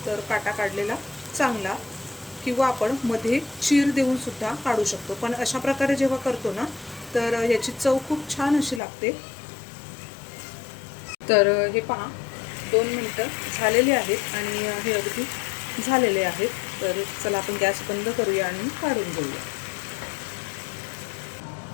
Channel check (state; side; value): drops out; right; at 8.8 s